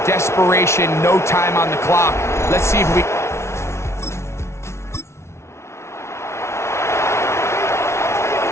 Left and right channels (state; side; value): late; right; 0.13 ms